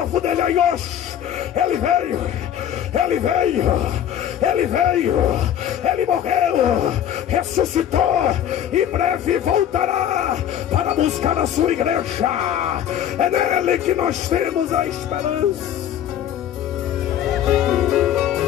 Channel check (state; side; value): quieter; right; 10.3 dB